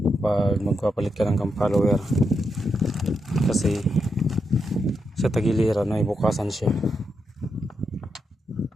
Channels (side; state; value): both; normal; correlation 0.83